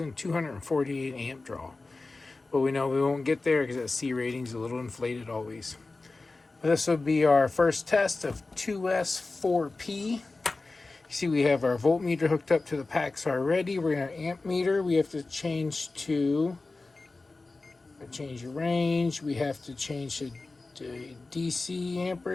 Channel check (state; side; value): quieter; right; 3.5 dB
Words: amp draw. But we know we won't get there because that C rating is a little inflated always. But this will be our first test of 2S4P. You see we have our voltmeter hooked up to the packs already. We're going to amp meter. We have to change the range. We have to change the DC